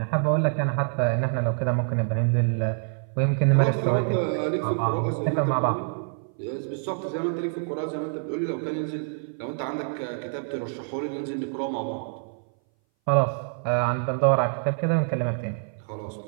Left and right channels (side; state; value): left; silent; 59 dB below the other